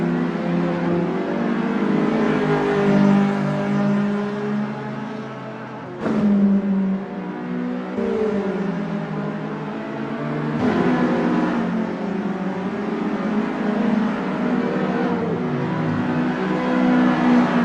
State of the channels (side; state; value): both; identical; correlation 1.00